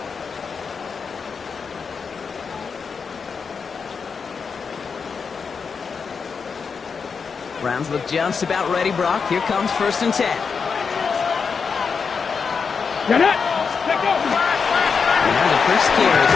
Browns look just about ready, Brock. Here comes 1st and 10. Get it! Now the first carry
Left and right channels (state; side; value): quieter; right; 5.6 dB